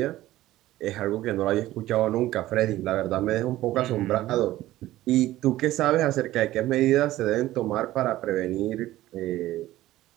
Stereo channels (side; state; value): left; quieter; 15.5 dB